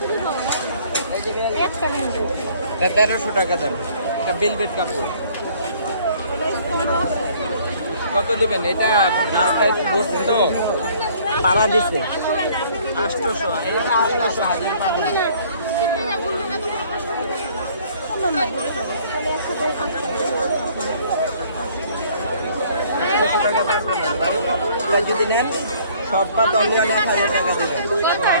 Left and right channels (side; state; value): both; inverted; correlation -0.57